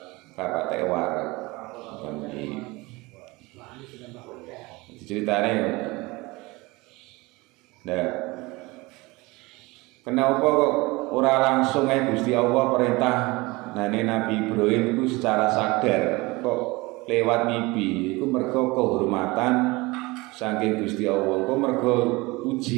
patek warak. Ceritane nah, kenapa kok ora langsung Gusti Allah perintah nane Nabi Ibrahim itu secara sadar kok lewat mimpi iku mergo kehormatan saking Gusti Allah. Kok mergo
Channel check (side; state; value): left; quieter; 23.1 dB